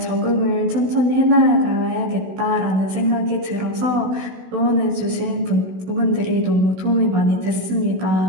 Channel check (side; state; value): left; late; 16 ms